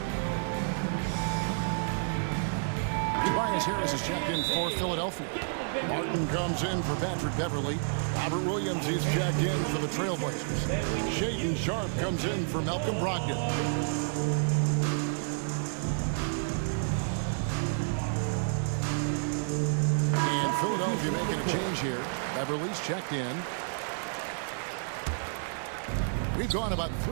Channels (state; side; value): silent; left; digital silence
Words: Tobias Harris is checked in for Philadelphia. Martin comes in for Patrick Beverly. Robert Williams, he's checked in for the Trailblazers. Shaden Sharp comes in for Malcolm Brogdon. And Philadelphia making a change here. Beverly's checked in. We've gone about